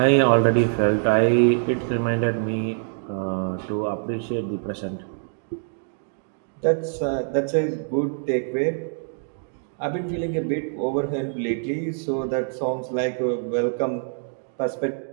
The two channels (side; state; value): left; silent; digital silence